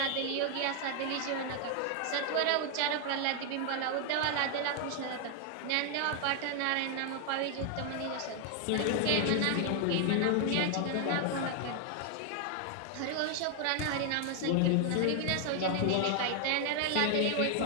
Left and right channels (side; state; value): both; different; correlation 0.00